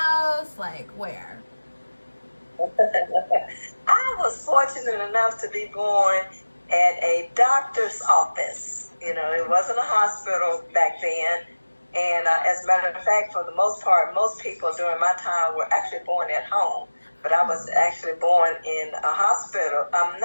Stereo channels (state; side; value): inverted; both; correlation -1.00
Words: Like where? I was fortunate enough to be born at a doctor's office. You know, it wasn't a hospital back then. And as a matter of fact, for the most part, most people during my time were actually born at home. But I was actually born in a hospital,